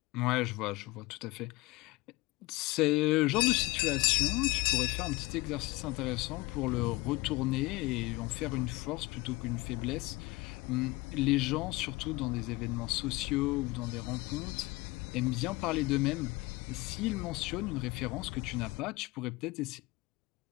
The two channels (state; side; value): quieter; right; 21.6 dB